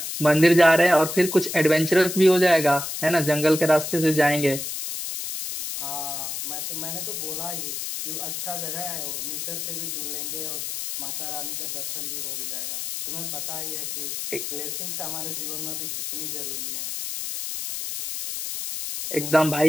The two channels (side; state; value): left; noise; hiss, 5 dB below the sound